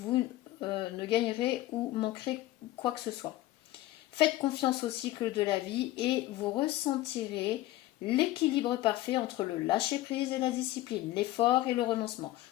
vous ne gagnerez ou manquerez quoi que ce soit. Faites confiance au cycle de la vie et vous ressentirez l'équilibre parfait entre le lâcher-prise et la discipline, l'effort et le renoncement.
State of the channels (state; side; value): quieter; right; 16.2 dB